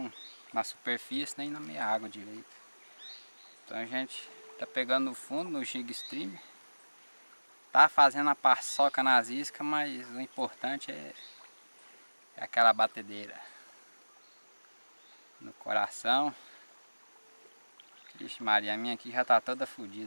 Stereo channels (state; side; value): inverted; both; correlation -1.00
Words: na superfície nem na meia água direito. Então a gente tá pegando no fundo no jig stream. Tá fazendo a paçoca nas iscas, mas o importante é aquela batedeira no coração. Vixe Maria, a minha aqui já tá toda